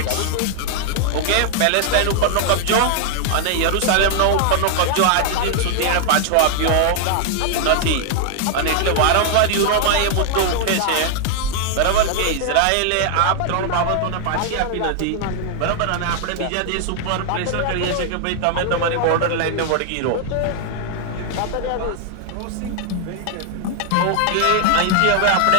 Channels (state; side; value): different; both; correlation 0.00